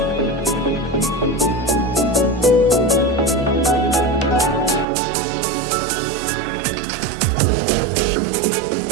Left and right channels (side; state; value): left; drops out; at 4.9 s